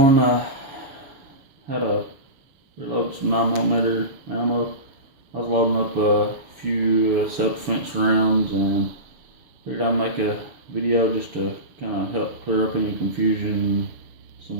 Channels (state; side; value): late; left; 7.2 ms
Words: how to reload some 9mm ammo. I was loading up a few self-defense rounds and figured I'd make a video just to kind of help clear up any confusion,